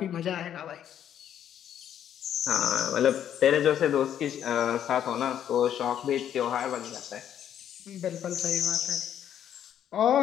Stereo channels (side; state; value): right; quieter; 9.9 dB